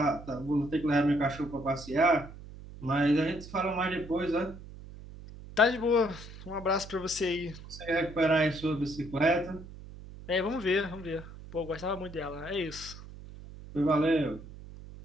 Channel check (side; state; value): right; noise; hum, 15 dB below the sound